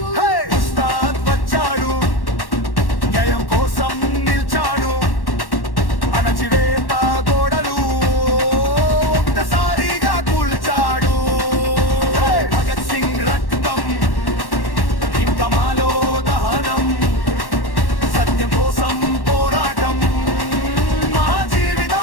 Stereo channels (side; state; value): right; late; 1.1 ms